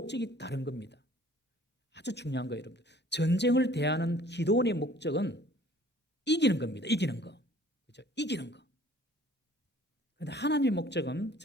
다른 겁니다. 아주 중요한 거예요, 여러분들. 전쟁을 대하는 기드온의 목적은 이기는 겁니다. 이기는 거. 그렇죠? 이기는 거. 그런데 하나님의 목적은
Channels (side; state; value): both; normal; correlation 0.54